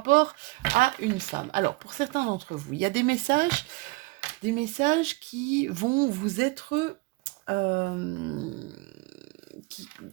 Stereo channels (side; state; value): left; quieter; 25.0 dB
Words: à une femme. Alors, pour certains d'entre vous, il y a des messages qui vont vous être...